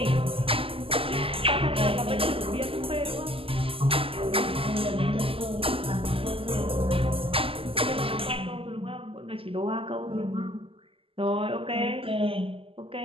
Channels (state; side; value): late; left; 0.26 ms